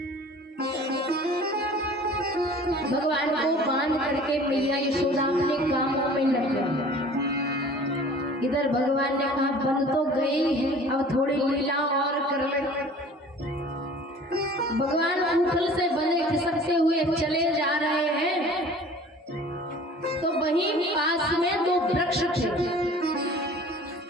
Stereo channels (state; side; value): normal; both; correlation 0.46